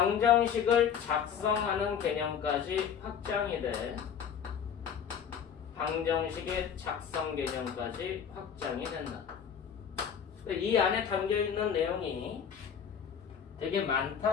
작성하는 개념까지 확장이 돼. 방정식의 작성 개념까지 확장이 된다. 이 안에 담겨있는 내용이 되게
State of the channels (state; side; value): quieter; right; 7.8 dB